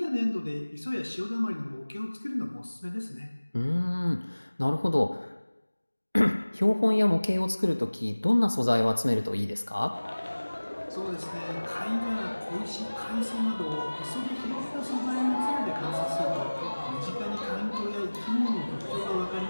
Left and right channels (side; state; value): both; inverted; correlation -1.00